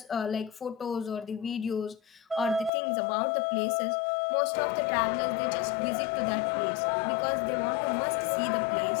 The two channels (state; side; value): drops out; right; at 2.7 s